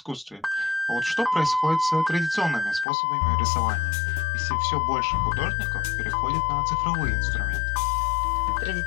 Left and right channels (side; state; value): right; drops out; at 2.9 s